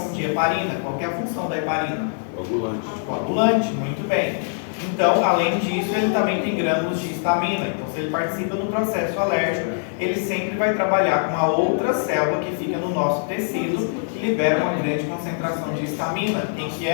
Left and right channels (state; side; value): silent; right; digital silence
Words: de heparina. Qual que é a função da heparina? Coagulante. Coagulante, muito bem. Então, além disso, ele também tem grânulos de histamina. Então, se ele participa do processo alérgico, ele sempre vai trabalhar com uma outra célula que fica no nosso tecido, que libera uma grande concentração de histamina. Quem que